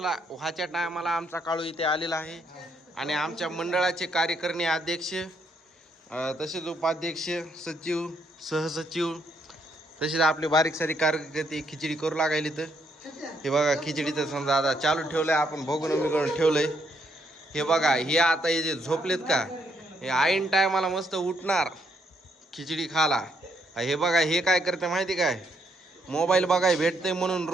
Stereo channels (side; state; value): both; normal; correlation 0.74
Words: टायमाला आमचा काळू इथे आलेला आहे आणि आमच्या मंडळाचे कार्यकारिणी अध्यक्ष, तसेच उपाध्यक्ष, सचिव, सहसचिव, तसेच आपले बारीक सारी कार्यकर्ते खिचडी करू लागायली. तर हे बघा खिचडीचं समजा आता चालू ठेवलंय, आपण बघून ठेवलंय. हे बघा, हे आता हे जे झोपलेत का, हे आईन टायमाला मस्त उठणार खिचडी खाला. हे बघा हे काय करते माहिती काय, मोबाईल बघाय भेटते म्हणून